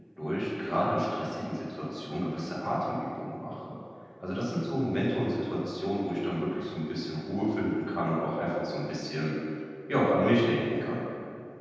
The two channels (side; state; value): both; identical; correlation 1.00